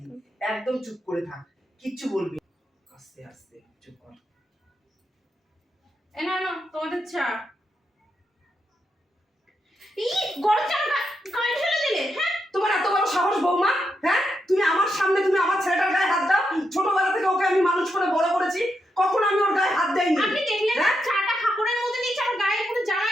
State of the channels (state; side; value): normal; both; correlation 0.83